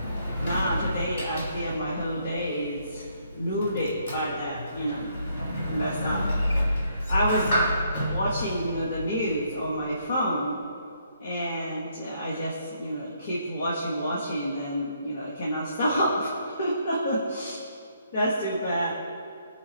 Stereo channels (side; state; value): both; inverted; correlation -0.72